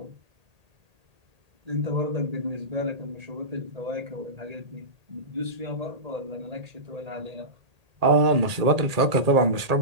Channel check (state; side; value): late; left; 1.8 ms